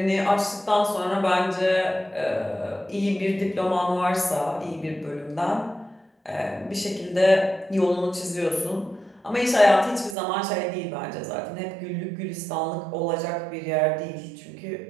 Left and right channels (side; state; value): left; drops out; at 10.2 s